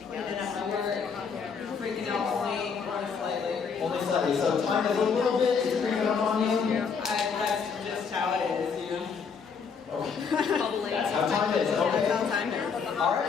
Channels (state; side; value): quieter; right; 5.9 dB